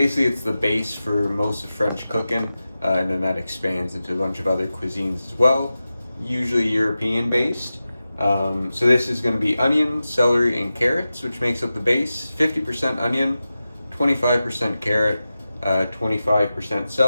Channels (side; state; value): both; inverted; correlation -0.94